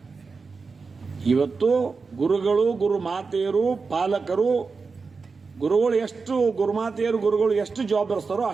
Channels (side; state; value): left; quieter; 4.6 dB